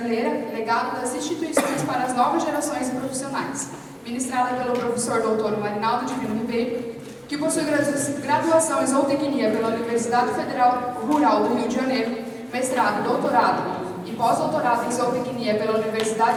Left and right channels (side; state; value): both; identical; correlation 1.00